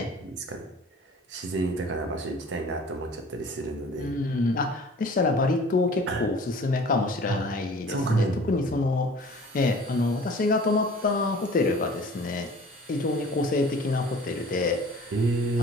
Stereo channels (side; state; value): both; normal; correlation 0.46